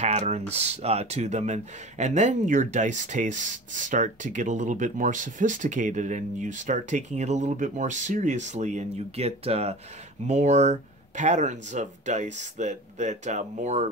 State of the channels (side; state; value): both; normal; correlation 0.37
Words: to them. And then your dice tastes start to get a little bit more sophisticated and you start taking it a little bit more seriously and you get more patterns of dice that